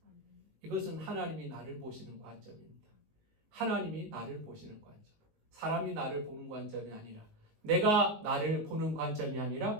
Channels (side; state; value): left; late; 19 ms